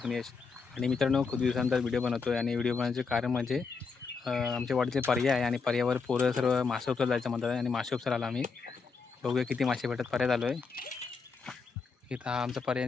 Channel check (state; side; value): quieter; right; 5.0 dB